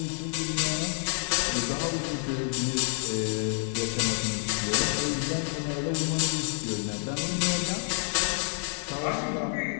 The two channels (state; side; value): silent; right; 59 dB below the other